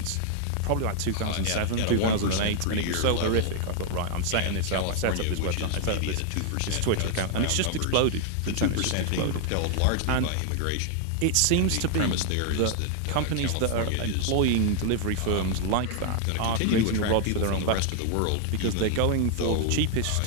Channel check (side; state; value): both; different; correlation 0.00